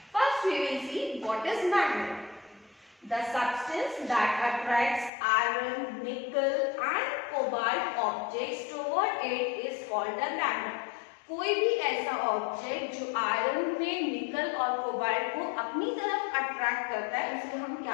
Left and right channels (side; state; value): right; drops out; at 5.1 s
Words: First we will see what is magnet. The substance that attracts iron, nickel and cobalt objects toward it is called a magnet. कोई भी ऐसा ऑब्जेक्ट जो आयरन में, निकल और कोबाल्ट को अपनी तरफ अट्रैक्ट करता है, उसे हम